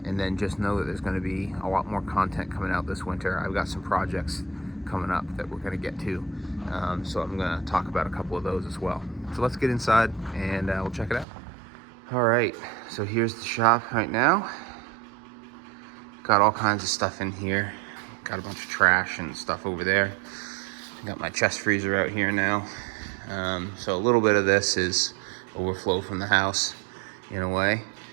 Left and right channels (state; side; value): drops out; left; at 11.2 s